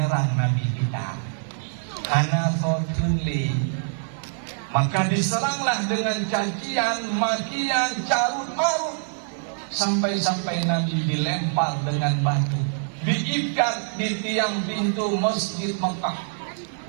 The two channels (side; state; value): left; silent; 59 dB below the other